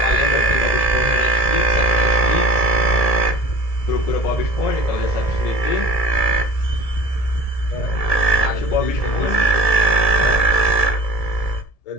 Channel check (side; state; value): right; late; 1.7 ms